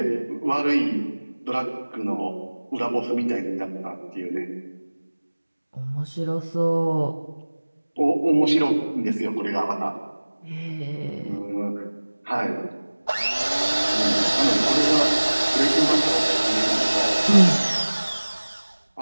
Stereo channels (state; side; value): inverted; both; correlation -1.00